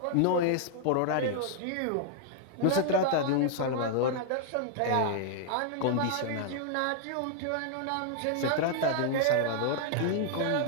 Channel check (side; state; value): both; different; correlation 0.00